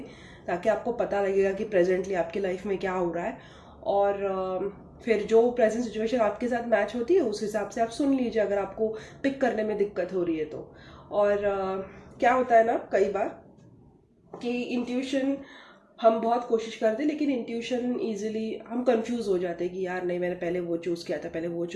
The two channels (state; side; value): identical; both; correlation 1.00